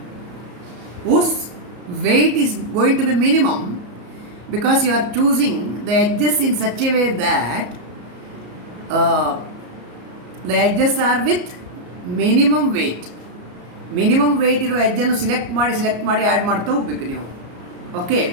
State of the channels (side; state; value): left; late; 34 ms